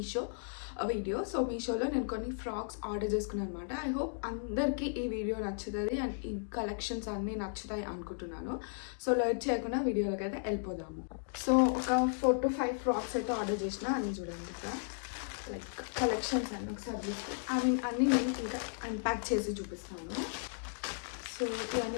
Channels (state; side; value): silent; right; digital silence